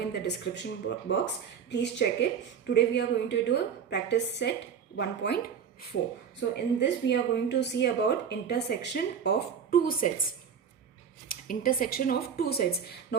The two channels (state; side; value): quieter; left; 7.4 dB